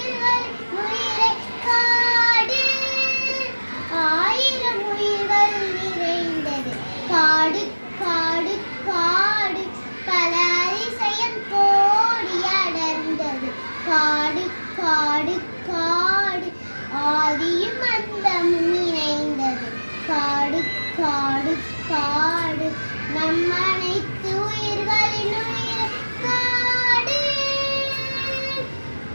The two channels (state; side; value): inverted; both; correlation -1.00